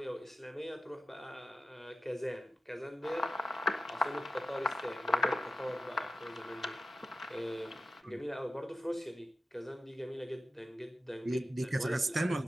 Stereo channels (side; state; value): both; normal; correlation 0.93